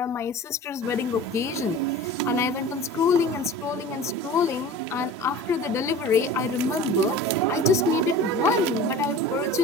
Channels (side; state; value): both; normal; correlation 0.38